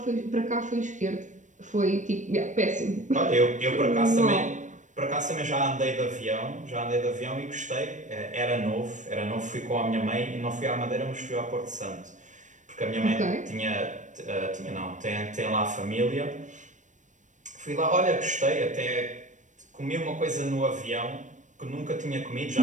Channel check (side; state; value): left; late; 0.36 ms